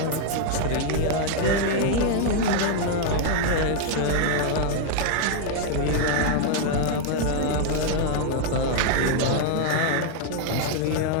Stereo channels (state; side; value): different; both; correlation 0.00